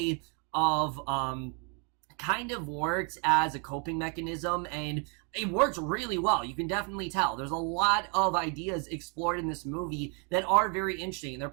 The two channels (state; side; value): quieter; left; 36.4 dB